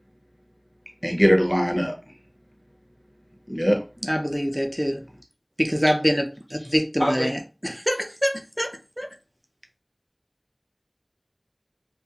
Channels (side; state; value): both; identical; correlation 1.00